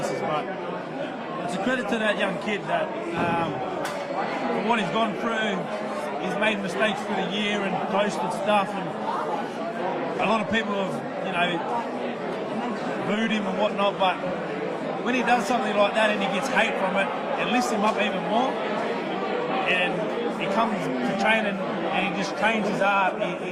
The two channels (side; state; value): both; identical; correlation 1.00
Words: But it's a credit to that young kid that for what he's gone through. He's made mistakes through the year and coasted stuff, and a lot of people have, you know, booed him and whatnot, but when he does something like that and he gets hate from it, it lifts him up even more, and he comes to training and he just trains his